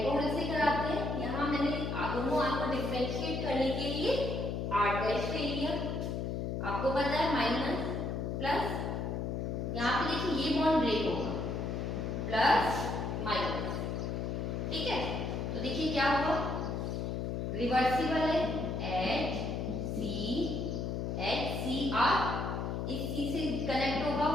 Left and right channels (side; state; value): left; noise; hum, 2 dB below the sound